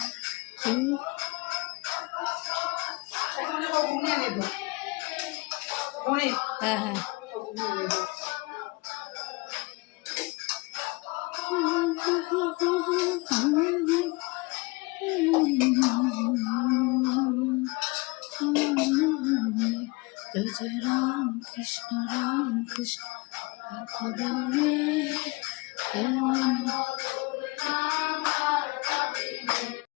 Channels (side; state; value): right; quieter; 25.2 dB